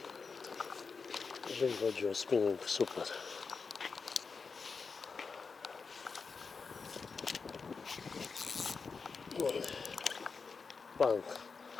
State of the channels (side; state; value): right; quieter; 5.0 dB